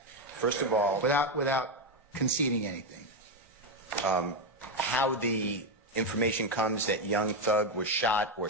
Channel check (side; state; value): both; normal; correlation 0.08